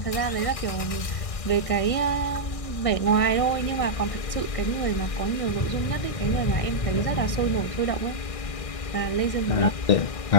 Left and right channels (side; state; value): right; late; 1.6 ms